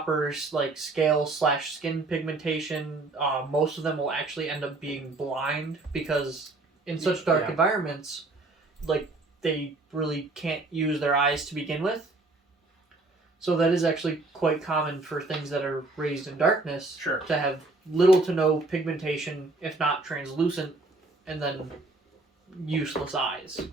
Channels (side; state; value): left; quieter; 3.1 dB